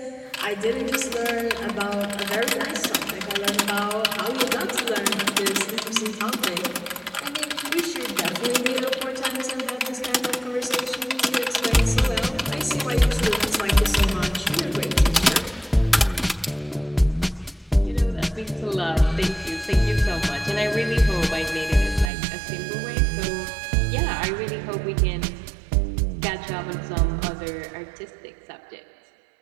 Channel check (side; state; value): left; drops out; at 22.1 s